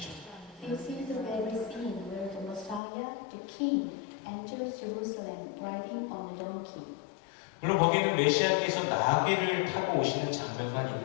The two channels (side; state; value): right; drops out; at 2.8 s